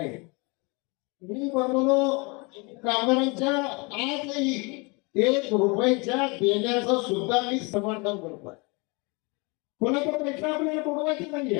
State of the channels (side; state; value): right; quieter; 29.2 dB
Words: मी म्हणलो कामगारांच्या आजही 1 रुपयाच्या देण्याचं सुद्धा मी समर्थन करतोय. कोणाचा पैसा आपल्याला बुडवायचा नाही